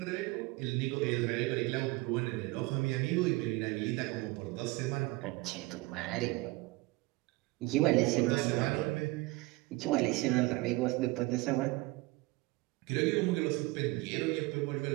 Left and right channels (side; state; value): left; quieter; 22.1 dB